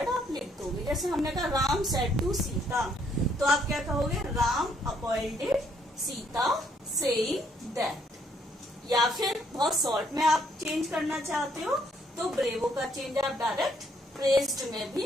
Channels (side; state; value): both; normal; correlation 0.69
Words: आप लिख दोगे। जैसे हमने कहा राम सेड टू सीता, तो आप क्या कहोगे? Ram appointed Sita saying that. या फिर बहुत शॉर्ट में आप चेंज करना चाहते हो तो ब्रेवो का चेंज आप डायरेक्ट प्रेज्ड में भी